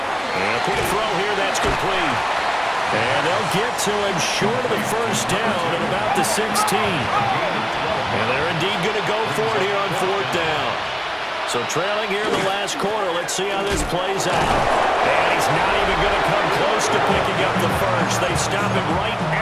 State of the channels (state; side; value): identical; both; correlation 1.00